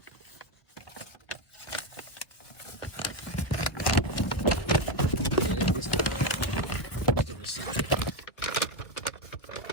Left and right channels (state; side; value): late; right; 1.7 ms